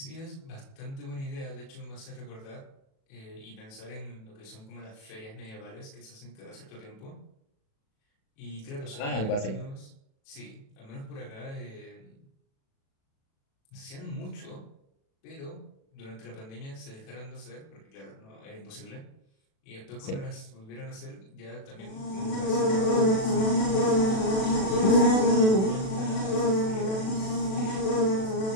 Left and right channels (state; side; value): late; right; 36 ms